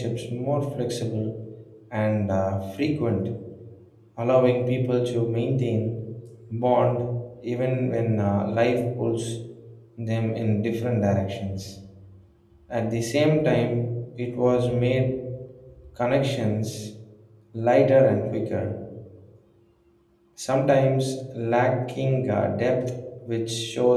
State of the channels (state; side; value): identical; both; correlation 1.00